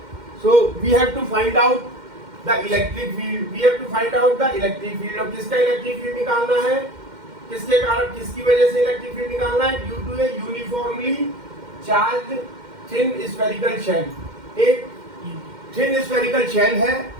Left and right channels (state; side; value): late; left; 2.1 ms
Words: So we have to find out the electric field. We have to find out the electric field. अब किसका electric field निकालना है? किसके कारण, किसकी वजह से electric field निकालना है? Due to a uniformly charged thin spherical shell. एक thin spherical shell है